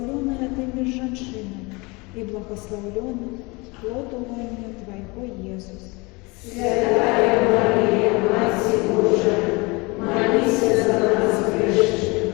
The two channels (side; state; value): right; quieter; 26.1 dB